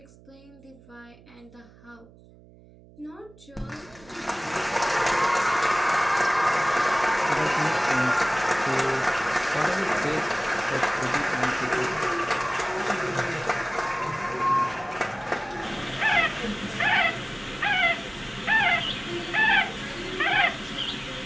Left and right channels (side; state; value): right; noise; hum, 24 dB below the sound